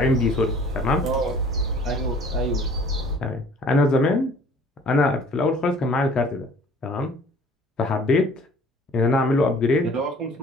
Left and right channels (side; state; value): both; normal; correlation 0.52